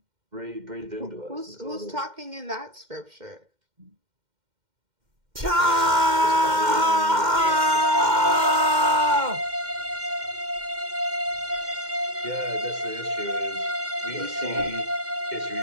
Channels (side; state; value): left; late; 2.1 ms